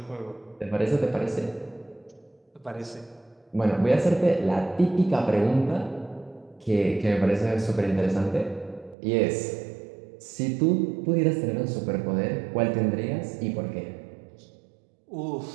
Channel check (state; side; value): drops out; left; at 9.0 s